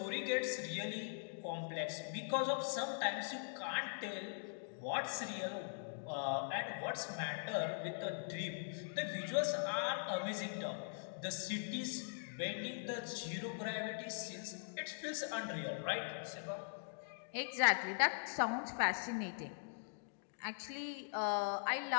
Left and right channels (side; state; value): right; silent; digital silence